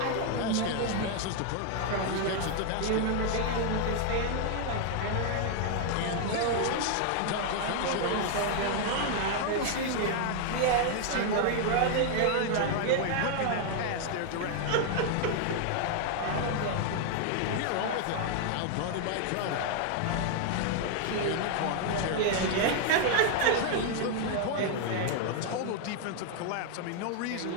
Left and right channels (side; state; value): both; different; correlation 0.00